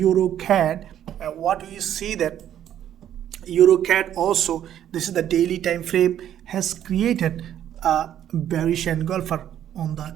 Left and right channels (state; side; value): quieter; left; 10.7 dB